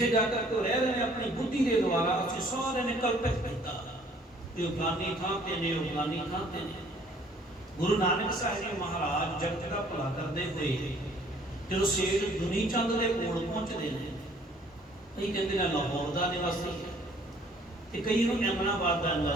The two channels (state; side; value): normal; both; correlation 0.58